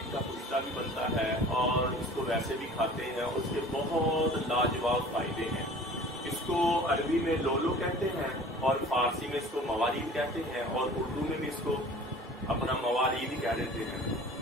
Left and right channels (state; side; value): normal; both; correlation 0.44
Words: کا کشتہ بھی بنتا ہے اور اس کو ویسے بھی کھاتے ہیں اور اس کے بہت لاجواب فائدے ہیں۔ اس کو عربی میں لولو کہتے ہیں اور فارسی میں اس کو موالید کہتے ہیں اور اردو میں بھی اس کو اپنا موالید ہی کہہ دیتے ہیں